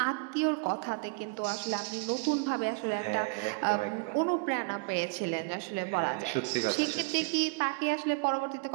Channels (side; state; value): left; quieter; 31.0 dB